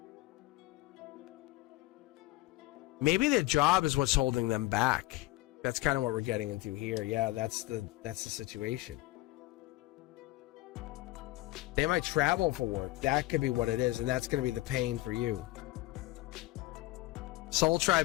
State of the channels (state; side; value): quieter; right; 18.6 dB